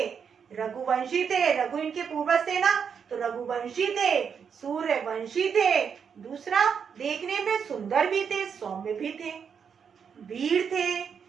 रघुवंशी थे, रघु इनके पूर्वज थे ना, तो रघुवंशी थे, सूर्यवंशी थे। दूसरा देखने में सुंदर भी थे, सौम्य भी थे, वीर थे,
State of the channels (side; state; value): left; quieter; 6.9 dB